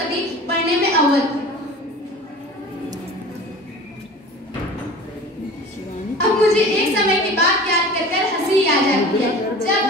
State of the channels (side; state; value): both; normal; correlation 0.40